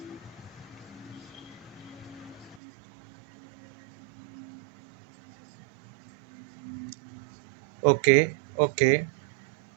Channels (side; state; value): left; drops out; at 2.6 s